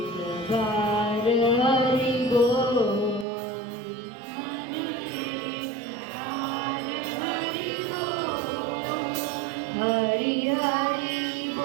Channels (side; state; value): left; drops out; at 3.2 s